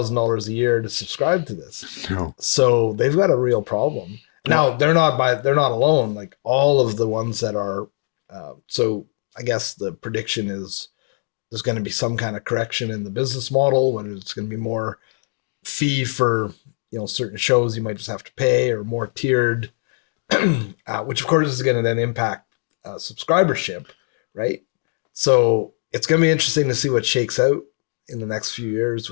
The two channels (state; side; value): silent; right; digital silence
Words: a year to subscribe to this. No. So they've got a real problem. Now, they're not alone. Like all of the ones that are, so I guess the prediction is there's going to be some kind of correction in the business model, whether it's going to be more fee for, certain shows you might just have to pay, or more tiered, which of course is going to then impact subscribership, right? So it's going to be interesting to see what shakes out in the next few years